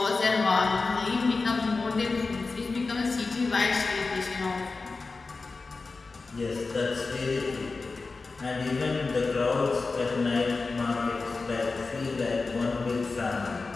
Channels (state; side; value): quieter; right; 4.0 dB